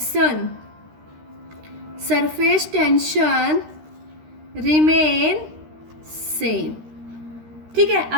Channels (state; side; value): late; left; 13 ms